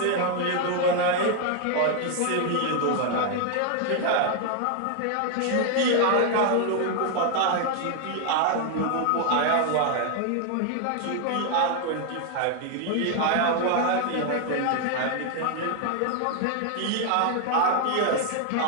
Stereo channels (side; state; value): both; different; correlation 0.00